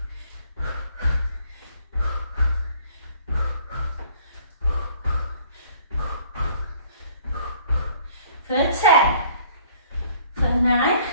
For 10. For 9,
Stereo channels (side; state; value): both; inverted; correlation -0.57